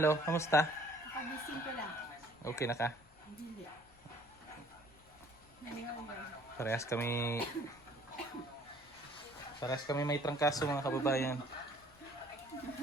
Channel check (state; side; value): noise; left; rumble, 28 dB below the sound